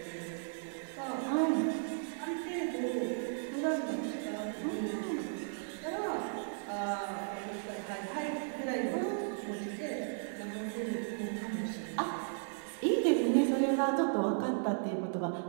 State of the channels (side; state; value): left; silent; digital silence